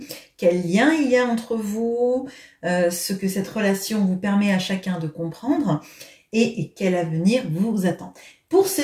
quel lien il y a entre vous, ce que cette relation vous permet à chacun de comprendre et quel avenir vous attend. Pour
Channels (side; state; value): both; identical; correlation 1.00